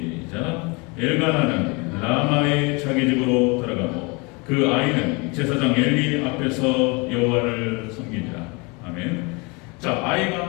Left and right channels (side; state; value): right; quieter; 29.0 dB